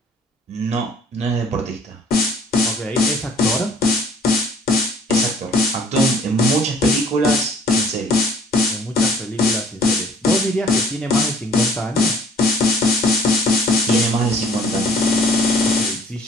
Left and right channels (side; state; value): both; normal; correlation 0.55